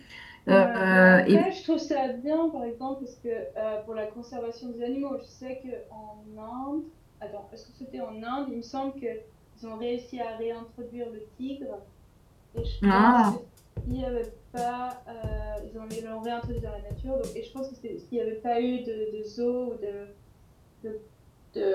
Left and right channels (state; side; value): identical; both; correlation 1.00